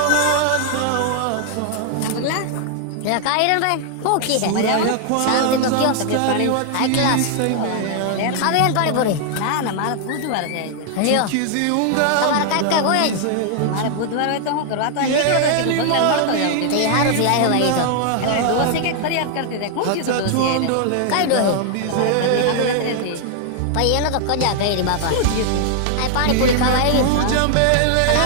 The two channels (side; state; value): both; different; correlation 0.00